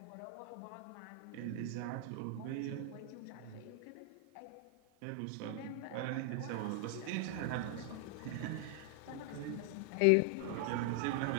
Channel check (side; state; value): both; different; correlation 0.00